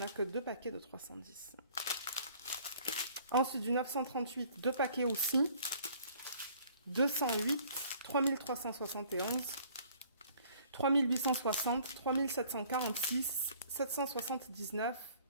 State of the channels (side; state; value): both; inverted; correlation -0.55